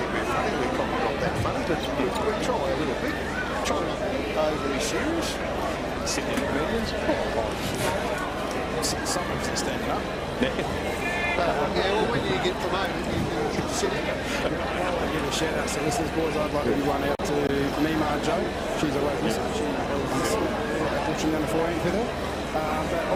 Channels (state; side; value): identical; both; correlation 1.00